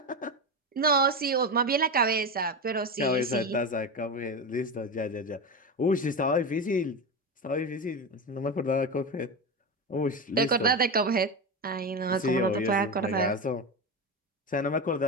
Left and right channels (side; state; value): both; normal; correlation 0.19